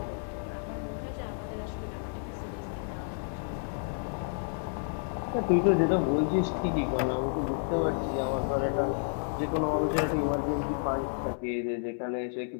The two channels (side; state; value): right; silent; digital silence